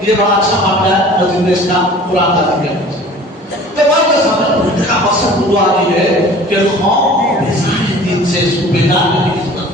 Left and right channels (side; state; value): both; normal; correlation 0.45